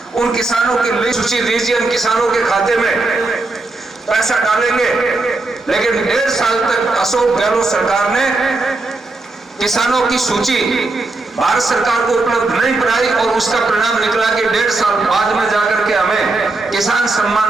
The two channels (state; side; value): quieter; left; 3.2 dB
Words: उन किसानों की लिस्ट सूची दीजिए, उन किसानों के खाते में पैसा डालेंगे। लेकिन 1.5 साल तक अशोक गहलोत सरकार ने किसानों की सूची भारत सरकार को उपलब्ध नहीं कराई और उसका परिणाम निकला कि 1.5 साल बाद में जाकर के हमें किसान